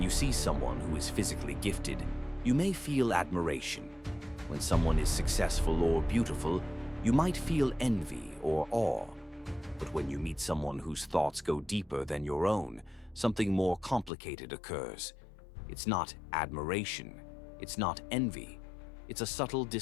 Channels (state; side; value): drops out; right; at 14.1 s